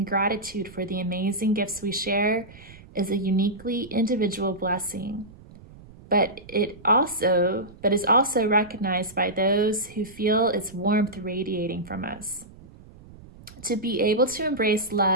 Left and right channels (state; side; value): noise; right; rumble, 21 dB below the sound